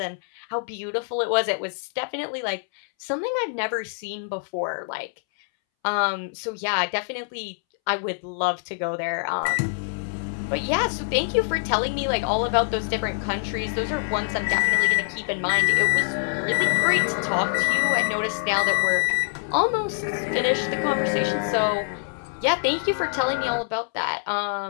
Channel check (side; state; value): right; silent; 62 dB below the other